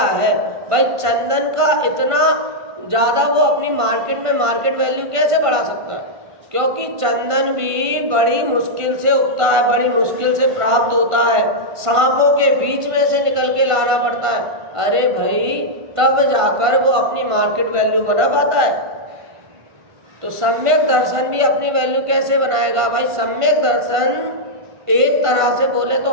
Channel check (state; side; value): late; left; 1.5 ms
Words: है। भाई चंदन का इतना ज्यादा वो अपनी मार्केट में मार्केट वैल्यू कैसे बढ़ा सकता है? क्योंकि चंदन भी बड़ी मुश्किल से उगता है, बड़ी मुश्किल से प्राप्त होता है, सांपों के बीच में से निकल के लाना पड़ता है। अरे भाई तब जाकर वो अपनी मार्केट वैल्यू बना पाता है। तो सम्यक दर्शन भी अपनी वैल्यू कैसे बनाएगा? भाई सम्यक दर्शन एक तरह से बोले तो